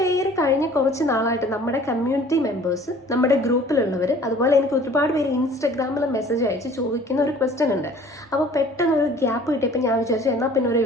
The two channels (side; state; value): both; normal; correlation 0.50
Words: കഴിഞ്ഞ കുറച്ച് നാളായിട്ട് നമ്മുടെ കമ്മ്യൂണിറ്റി മെമ്പേഴ്സ്, നമ്മുടെ ഗ്രൂപ്പിലുള്ളവർ, അതുപോലെ എനിക്ക് ഒരുപാട് പേര് ഇൻസ്റ്റഗ്രാമിൽ മെസ്സേജ് അയച്ച് ചോദിക്കുന്ന ഒരു ക്വസ്റ്റ്യൻ ഉണ്ട്. അപ്പോൾ പെട്ടെന്ന് ഒരു ഗ്യാപ്പ് കിട്ടിയപ്പോൾ ഞാൻ വിചാരിച്ചു എന്നാൽ പിന്നെ ഒരു